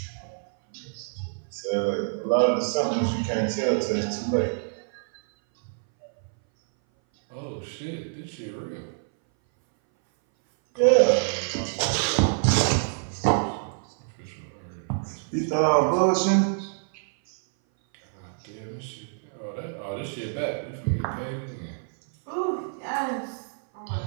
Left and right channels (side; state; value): left; silent; 58 dB below the other